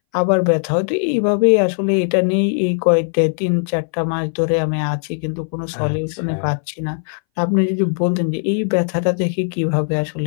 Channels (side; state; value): right; silent; 63 dB below the other